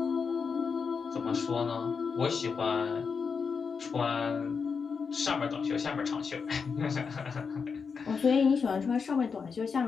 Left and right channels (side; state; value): right; quieter; 5.6 dB